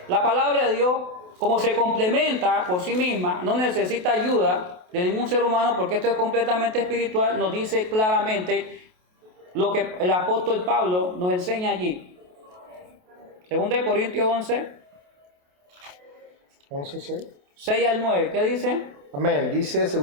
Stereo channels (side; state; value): left; late; 28 ms